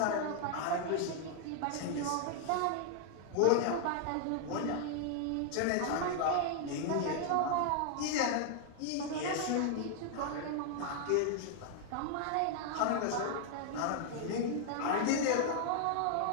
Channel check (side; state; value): both; different; correlation 0.00